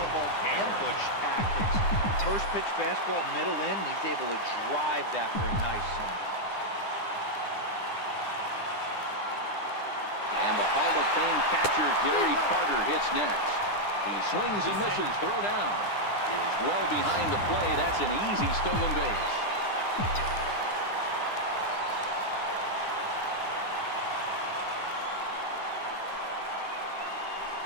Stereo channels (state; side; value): late; right; 9.9 ms